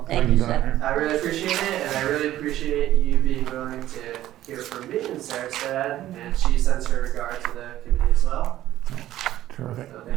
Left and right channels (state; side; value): quieter; left; 13.7 dB